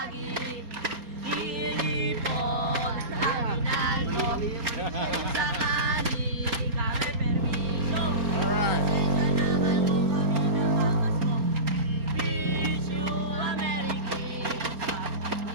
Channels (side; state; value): left; late; 4.3 ms